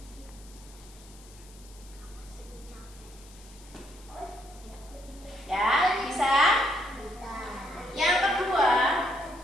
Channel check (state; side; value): noise; left; hiss, 23 dB below the sound